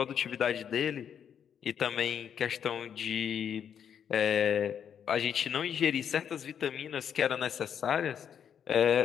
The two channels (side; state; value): right; quieter; 8.3 dB